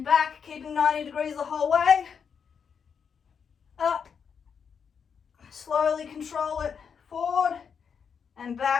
back, keeping 90 degrees the whole way. Up, slowly control it forward, and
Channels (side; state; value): right; quieter; 6.7 dB